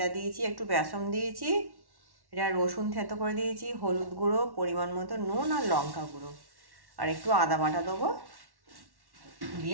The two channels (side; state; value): left; late; 1.1 ms